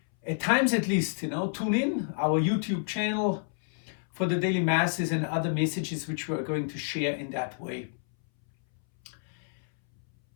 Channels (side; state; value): right; silent; 59 dB below the other